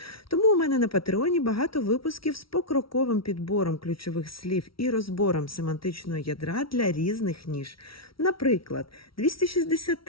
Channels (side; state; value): right; late; 0.75 ms